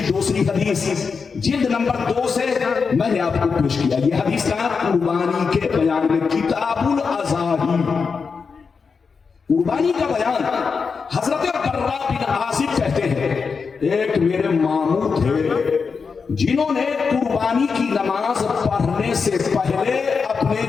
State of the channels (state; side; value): quieter; right; 5.3 dB